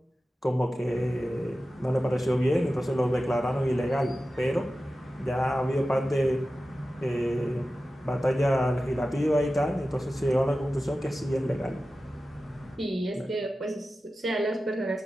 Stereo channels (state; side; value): normal; both; correlation 0.94